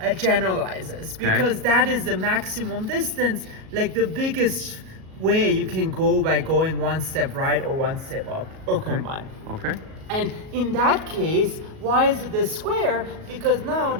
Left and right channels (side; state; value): left; late; 37 ms